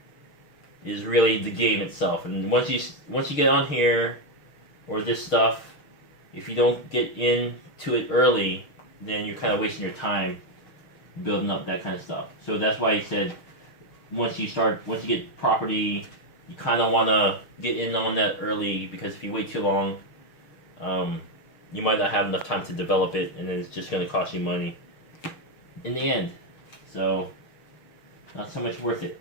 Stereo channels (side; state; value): right; late; 6.5 ms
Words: is really the game itself. And once you get on here, or this stuff, if you don't get into it early, then you're kind of wasting your time building up that kind of stuff. So that's why he said, once you get property, you kind of want to get in on that early, because if you wait too long, you might not have enough time to develop it, and then it's just going to cost you money in the end. So, not so much worth it.